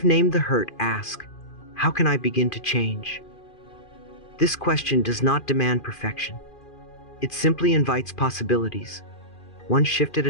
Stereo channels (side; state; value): right; late; 2.5 ms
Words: named the hurt, ask, how can I begin to change? This question does not demand perfection. It simply invites possibilities. One shift at